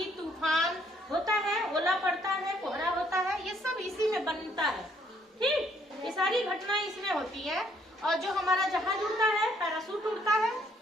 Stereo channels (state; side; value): normal; both; correlation 0.67